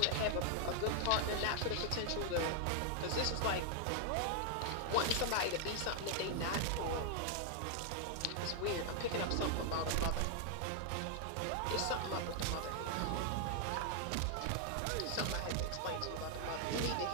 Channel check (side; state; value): both; different; correlation 0.00